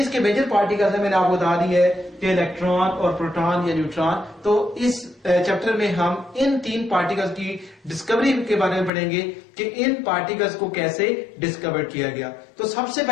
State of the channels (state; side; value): drops out; right; at 8.9 s